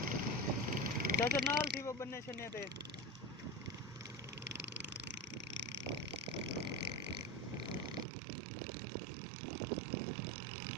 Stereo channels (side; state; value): left; drops out; at 8.1 s